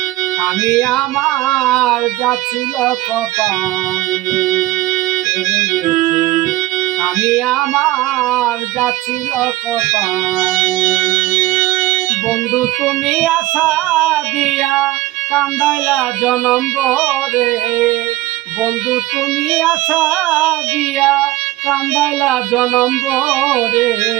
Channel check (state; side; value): quieter; left; 16.8 dB